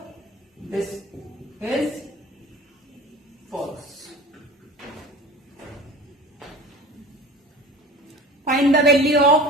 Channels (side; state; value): both; normal; correlation 0.38